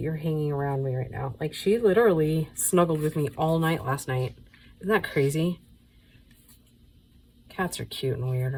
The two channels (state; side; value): identical; both; correlation 1.00